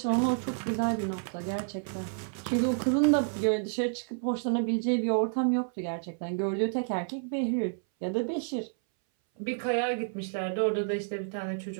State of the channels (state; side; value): silent; left; 58 dB below the other